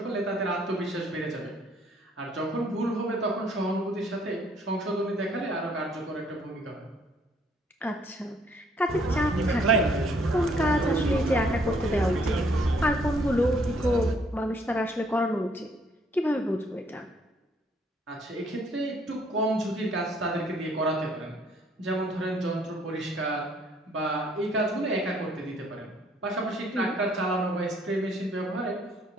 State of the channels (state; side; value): normal; both; correlation 0.64